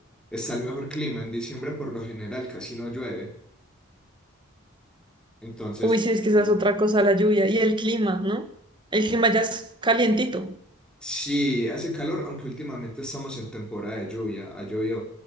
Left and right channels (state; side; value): normal; both; correlation 0.52